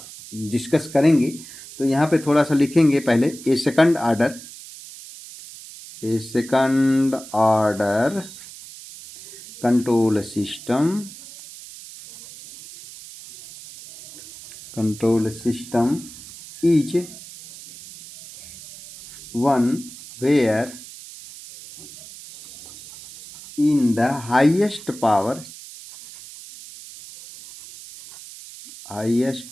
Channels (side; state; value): right; noise; hiss, 16 dB below the sound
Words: डिस्कस करेंगे। तो यहाँ पे थोड़ा सा लिखेंगे पहले a second order control system is one where in the highest power